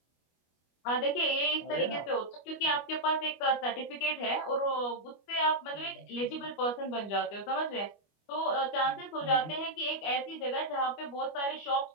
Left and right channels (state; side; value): late; right; 25 ms